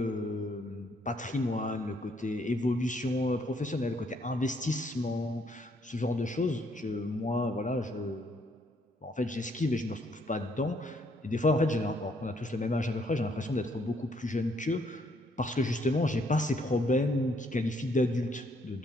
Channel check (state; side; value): normal; both; correlation 0.69